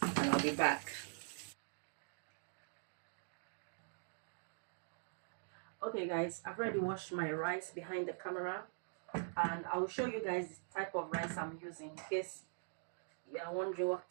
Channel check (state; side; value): silent; left; digital silence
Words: and I'll be back. Okay guys, I've already washed my rice behind the camera, and I'll show you guys the type of rice I'm using in case you are wondering what